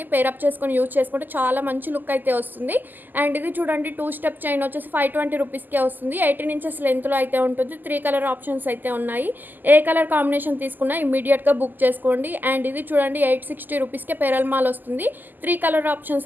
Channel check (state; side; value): late; left; 0.087 ms